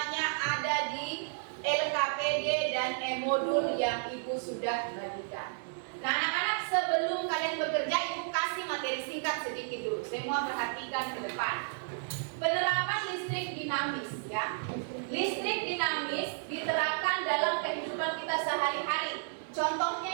ada di LKPD dan e-modul yang Ibu sudah bagikan. Nah anak-anak, sebelum kalian bekerja, Ibu kasih materi singkat sedikit dulu. Semua perhatikan ke depan. Penerapan listrik dinamis ya. Listrik dinamis diterapkan dalam kehidupan kita sehari-hari.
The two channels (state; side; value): silent; left; digital silence